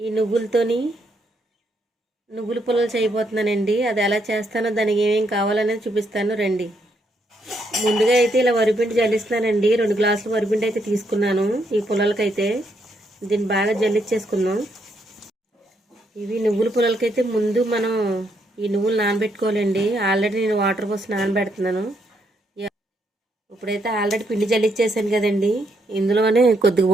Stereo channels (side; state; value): both; normal; correlation 0.76